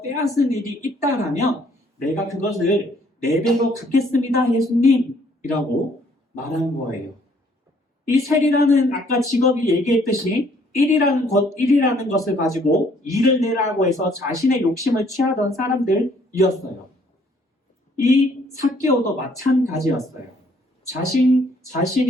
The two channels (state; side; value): normal; both; correlation 0.63